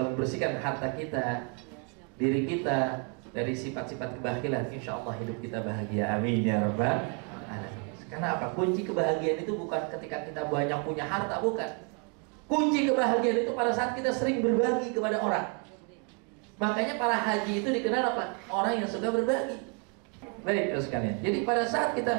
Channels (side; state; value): left; quieter; 35.9 dB